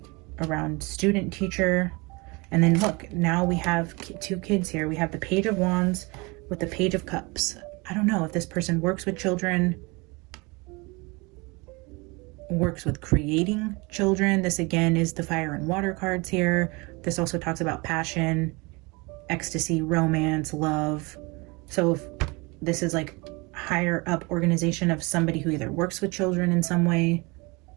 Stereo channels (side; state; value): left; quieter; 26.8 dB